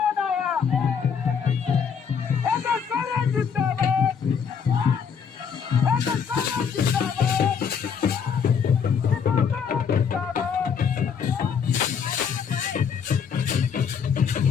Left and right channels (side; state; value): right; quieter; 6.8 dB